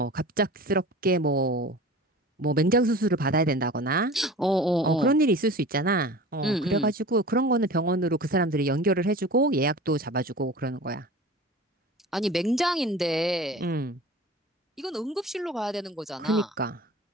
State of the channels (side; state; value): both; normal; correlation 0.38